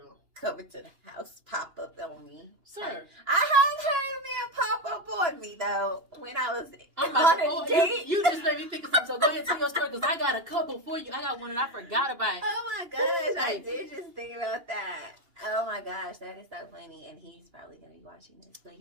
Coming to the house, pop up on me. Sir. I have heard a man pop up on me, though, when I was on a date. You just made me think of something. So go ahead and tell your story, because I got a couple for you. I got one that I forgot about. Oh, my gosh. I did just think about that. Oh, my gosh. That is so funny. And he's probably going to be watching this. But,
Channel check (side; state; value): left; late; 2.8 ms